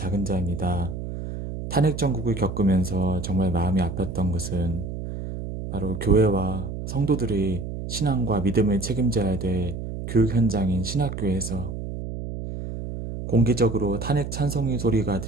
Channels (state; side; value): noise; right; hum, 7 dB below the sound